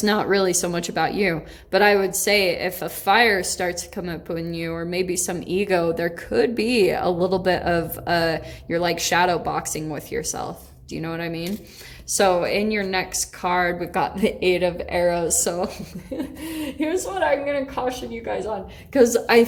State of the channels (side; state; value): both; identical; correlation 1.00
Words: not really so much about you. But I would say if a fire starts to come up in you, or maybe some ego, there could be a little bit of you're like shadow boxing with yourself. Do you know what I mean? So in your next card, we've got the Eight of Arrows. So here's what I'm going to caution you guys on. Because I